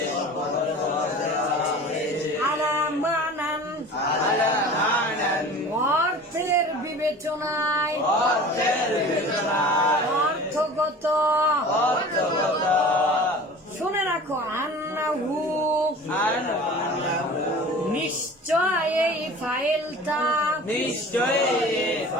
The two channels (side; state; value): both; normal; correlation 0.40